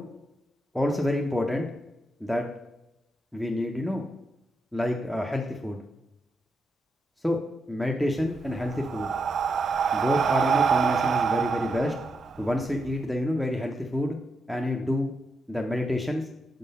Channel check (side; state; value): both; normal; correlation 0.83